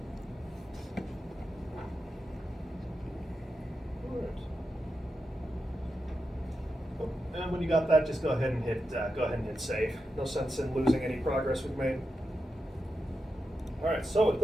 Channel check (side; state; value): both; normal; correlation 0.88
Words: when you got that, just go ahead and hit save. No sense in losing any progress we've made. All right, so at